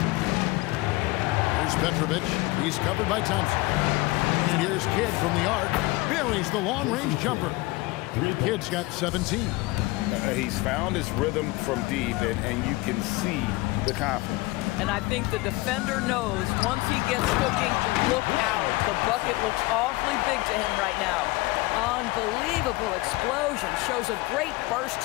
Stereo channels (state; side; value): quieter; right; 21.6 dB